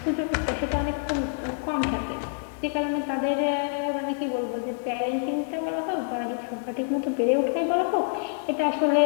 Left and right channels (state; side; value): silent; right; 60 dB below the other